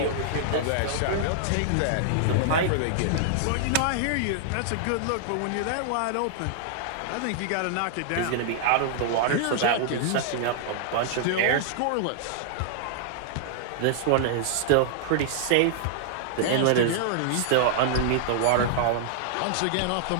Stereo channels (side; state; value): both; different; correlation -0.01